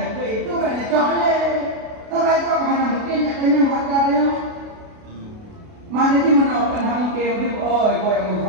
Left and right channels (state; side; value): late; left; 32 ms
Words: itu banyak coklat. Tapi cok hanya mungkin kena wajar dia. Mana di mana orang hangkem tu? Oh, kau yang